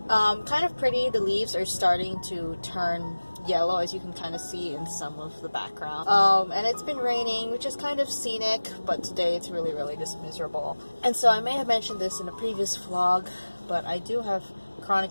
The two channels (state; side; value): inverted; both; correlation -1.00